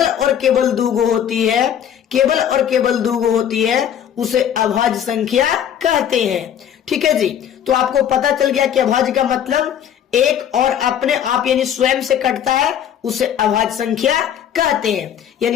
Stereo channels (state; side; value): quieter; right; 9.4 dB